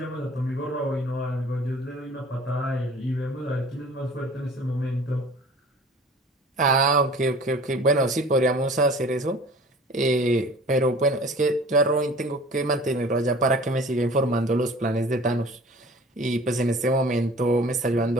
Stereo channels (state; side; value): normal; both; correlation 0.46